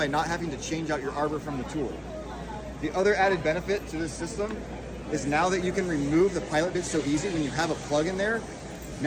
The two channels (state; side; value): identical; both; correlation 1.00